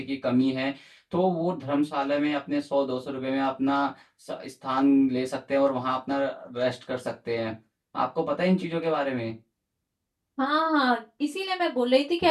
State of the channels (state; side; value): identical; both; correlation 1.00